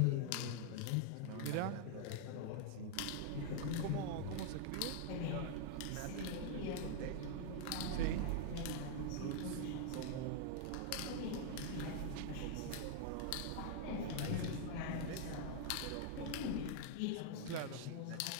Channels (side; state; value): both; different; correlation -0.01